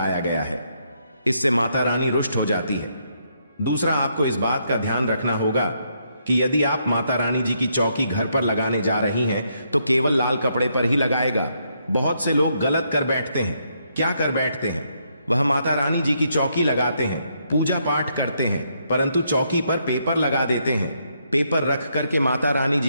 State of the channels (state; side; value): inverted; both; correlation -0.76